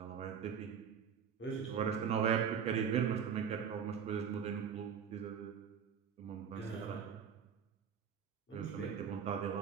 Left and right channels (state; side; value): quieter; left; 7.5 dB